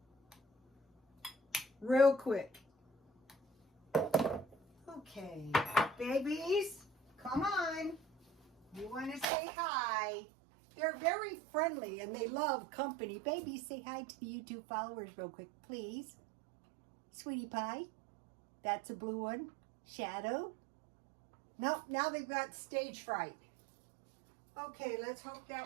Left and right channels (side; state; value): left; drops out; at 9.2 s